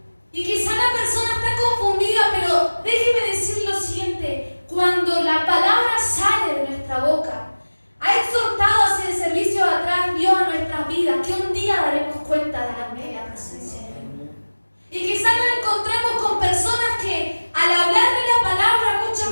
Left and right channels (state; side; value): inverted; both; correlation -1.00